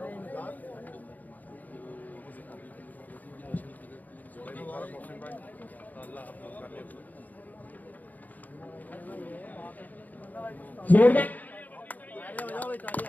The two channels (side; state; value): right; late; 0.081 ms